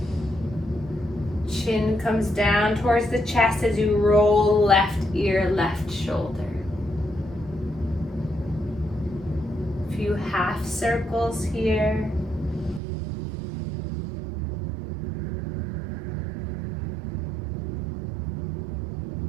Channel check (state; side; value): drops out; left; at 12.8 s